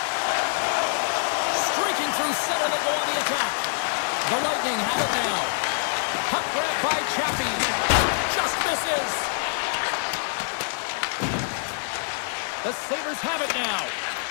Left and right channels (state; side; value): silent; right; digital silence